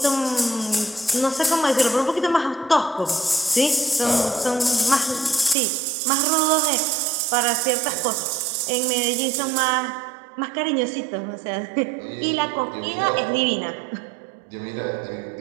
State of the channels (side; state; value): left; drops out; at 5.6 s